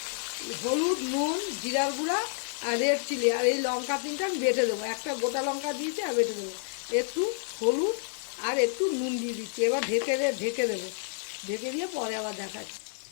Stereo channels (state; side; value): silent; right; 58 dB below the other